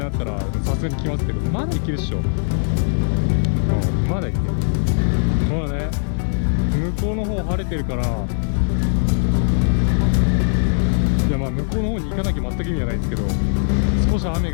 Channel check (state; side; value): silent; right; 64 dB below the other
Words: になったらさすがに来ますけど、まだいけるっしょ。まだいける。まだね、向こうの方晴れてるから、いやまあ向こうの方に行かなきゃ全く意味はないですけど、少し雨